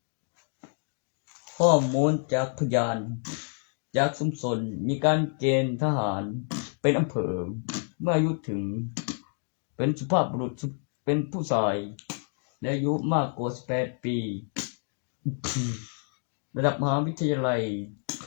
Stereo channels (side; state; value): right; silent; 59 dB below the other